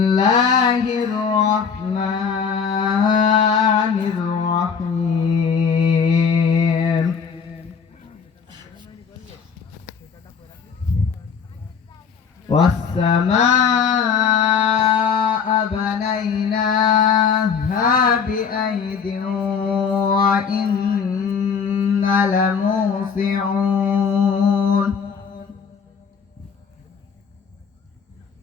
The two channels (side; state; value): right; quieter; 6.4 dB